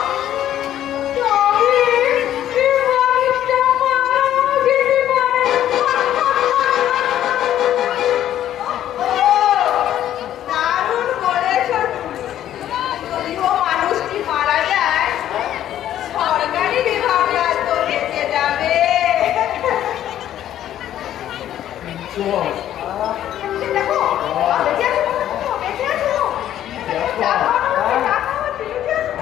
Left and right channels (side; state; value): right; quieter; 11.7 dB